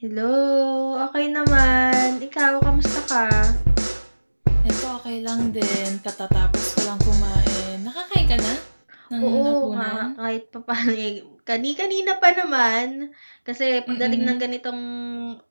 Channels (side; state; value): both; inverted; correlation -1.00